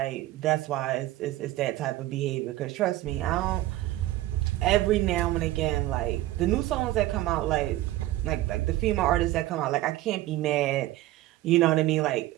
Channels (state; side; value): quieter; left; 16.0 dB